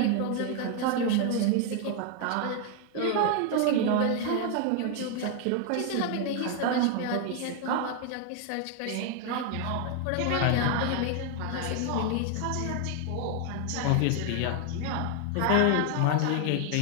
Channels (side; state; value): both; different; correlation 0.01